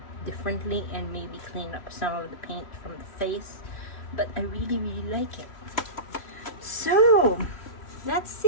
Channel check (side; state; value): right; late; 3.1 ms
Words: differently and maybe clean up some of the paint from the face. But I really, really like it. So that's